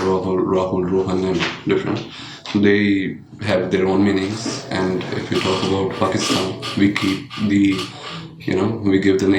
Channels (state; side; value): identical; both; correlation 1.00